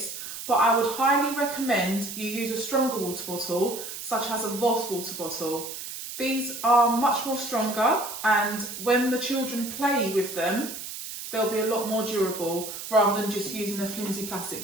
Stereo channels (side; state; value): right; noise; hiss, 9 dB below the sound